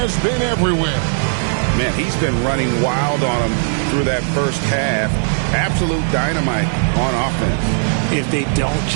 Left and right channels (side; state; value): left; silent; 67 dB below the other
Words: been everywhere. Man, he's been running wild on him through that first half. Absolute dynamite on offense. If they don't